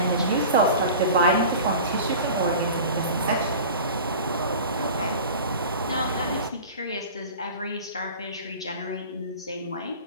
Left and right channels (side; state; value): both; inverted; correlation -0.37